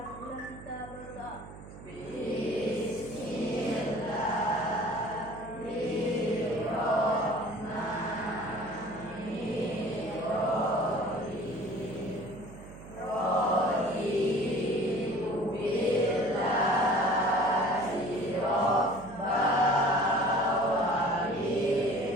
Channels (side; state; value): right; noise; hum, 16 dB below the sound